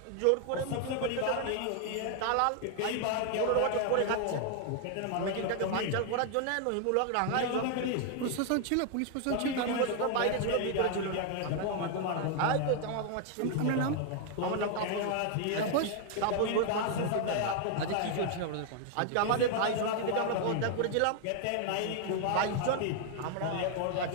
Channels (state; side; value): different; both; correlation 0.00